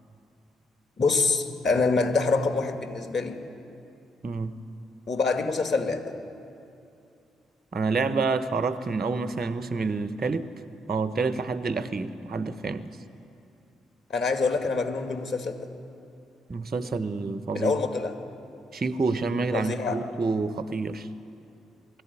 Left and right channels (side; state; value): both; normal; correlation 0.72